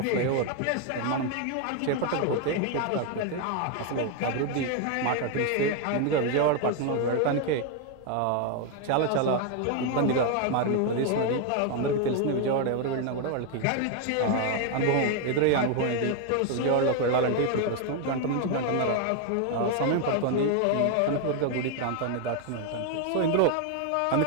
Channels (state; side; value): different; both; correlation 0.01